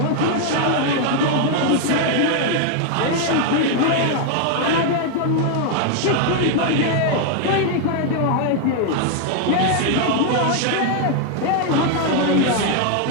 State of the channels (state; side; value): different; both; correlation 0.00